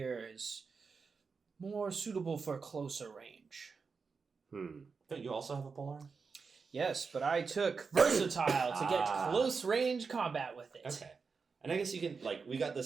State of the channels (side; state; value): left; quieter; 5.0 dB